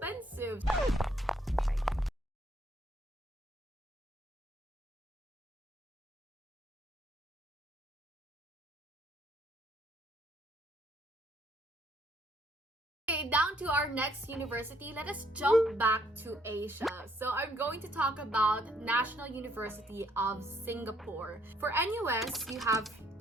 Down to our next university, let us jump back to Asia. So I'm going to talk about National University of Singapore. For NUS, you have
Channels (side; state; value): both; normal; correlation 0.68